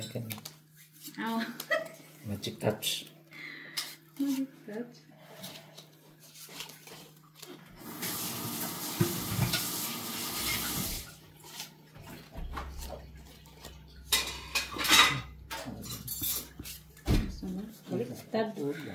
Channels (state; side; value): identical; both; correlation 1.00